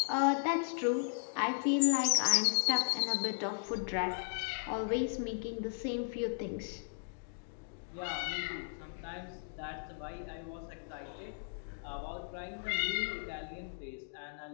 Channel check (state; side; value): silent; right; digital silence